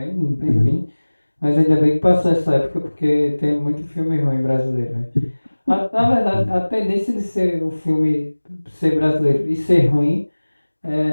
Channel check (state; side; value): inverted; both; correlation -1.00